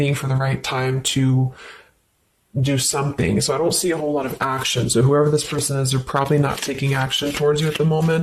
for the right time to do something. So I don't see a whole lot of action. So whoever this person is, they're probably not taking action towards you at the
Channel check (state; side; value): identical; both; correlation 1.00